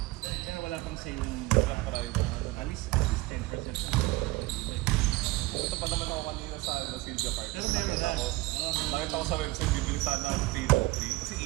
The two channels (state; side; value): quieter; left; 20.8 dB